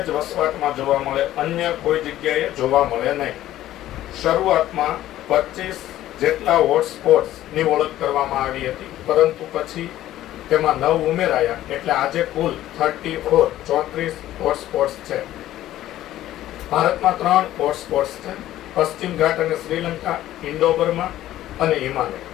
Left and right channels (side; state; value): right; quieter; 13.7 dB